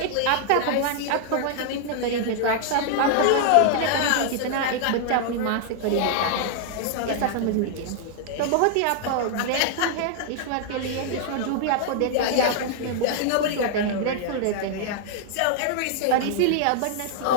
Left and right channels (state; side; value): different; both; correlation -0.01